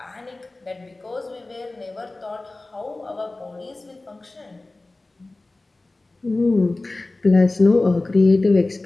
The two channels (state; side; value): quieter; right; 3.0 dB